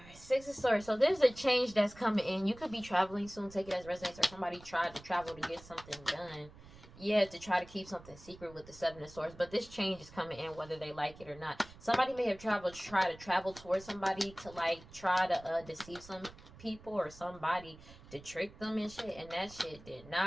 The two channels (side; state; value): right; noise; rumble, 20 dB below the sound